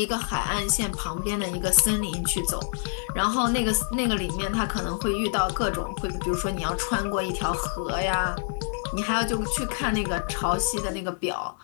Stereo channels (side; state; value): right; silent; digital silence